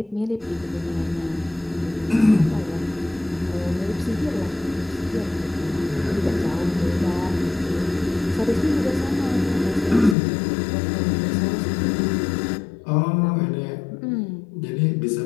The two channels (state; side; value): drops out; right; at 10.2 s